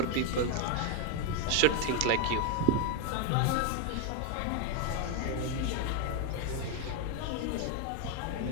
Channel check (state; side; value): different; both; correlation 0.01